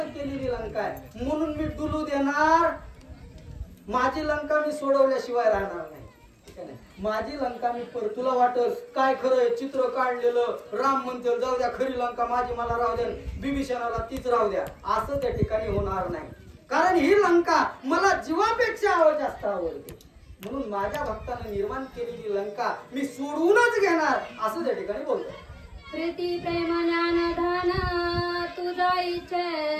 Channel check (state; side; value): identical; both; correlation 1.00